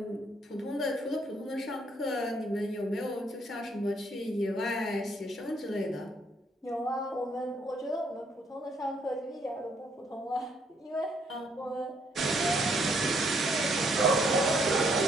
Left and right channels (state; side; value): normal; both; correlation 0.69